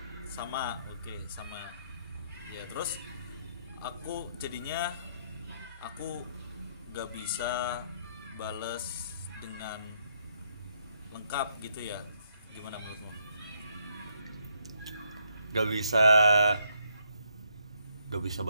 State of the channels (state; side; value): inverted; both; correlation -0.74